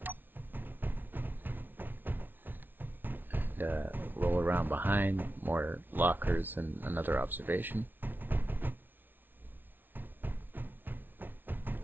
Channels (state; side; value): late; left; 0.093 ms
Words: And, roll around behind, more lockers and another observation.